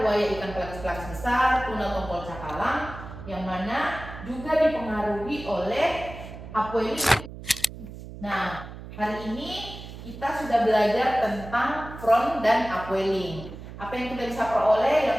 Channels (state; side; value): noise; right; hum, 13 dB below the sound